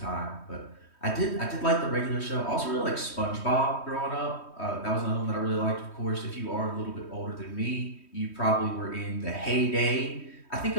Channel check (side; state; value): right; late; 3.1 ms